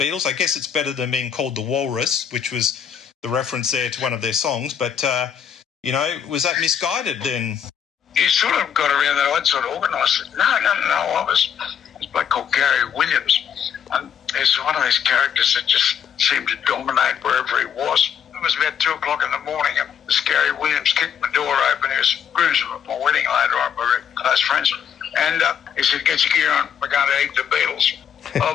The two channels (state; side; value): quieter; right; 8.2 dB